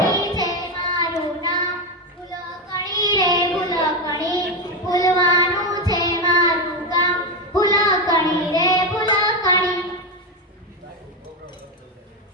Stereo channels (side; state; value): both; normal; correlation 0.11